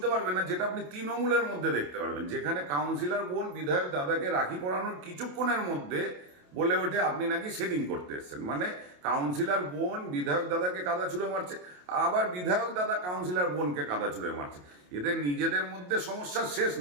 পারবেন না, যেটা আপনি তৃণমূলের মধ্যে দেখতে পারবেন, যেখানে কাউন্সিলর বোন বিধায়ক দাদাকে রাখি পরানোর কিছুক্ষণের মধ্যে বলে ওঠে আপনি নাকি সেটিং করতে এসেছেন। মানে কাউন্সিলর বোন বিধায়ক দাদাকে কাদা ছুঁড়ে মারছে, আবার বিধায়ক দাদা কাউন্সিলর বোনকে কাদা ছুঁড়ে মারছে। এদের নিজেদের মধ্যে সমস্যার শেষ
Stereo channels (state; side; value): late; left; 28 ms